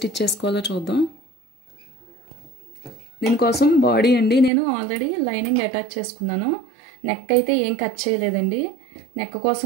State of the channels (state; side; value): drops out; left; at 4.5 s